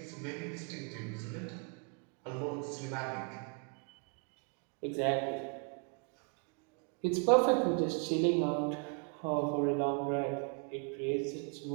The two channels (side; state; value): left; quieter; 38.1 dB